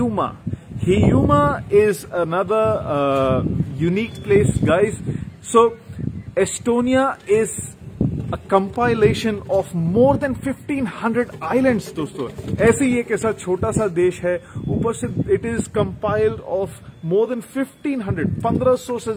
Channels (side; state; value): both; identical; correlation 1.00